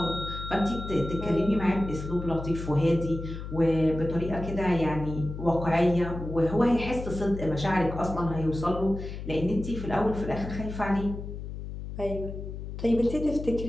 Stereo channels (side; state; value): left; noise; hum, 8 dB below the sound